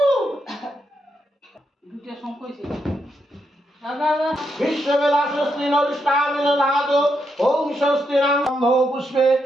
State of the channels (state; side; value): normal; both; correlation 0.81